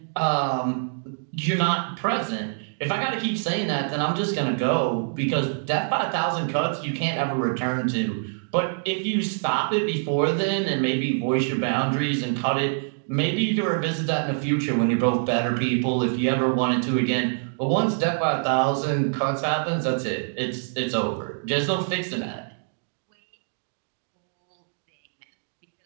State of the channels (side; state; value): left; silent; digital silence